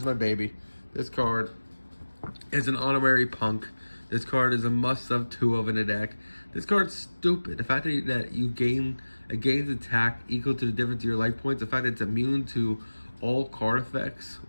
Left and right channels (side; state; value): both; inverted; correlation -1.00